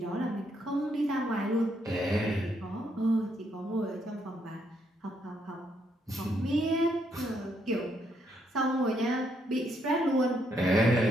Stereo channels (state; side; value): normal; both; correlation 0.75